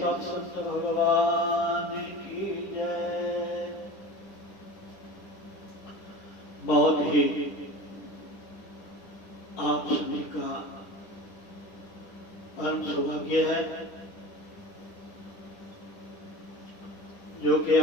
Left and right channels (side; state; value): right; late; 10 ms